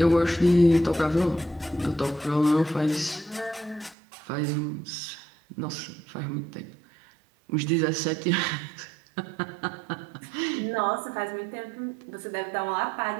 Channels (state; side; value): drops out; left; at 4.0 s